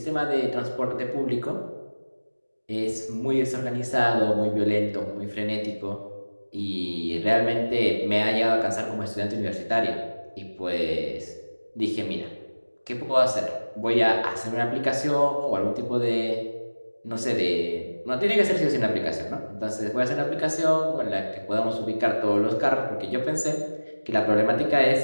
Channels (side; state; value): both; inverted; correlation -1.00